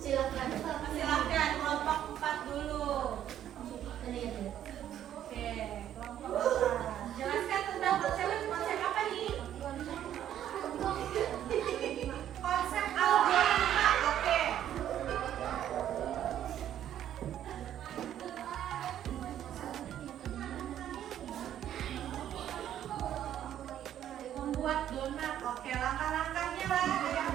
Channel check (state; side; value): quieter; left; 10.9 dB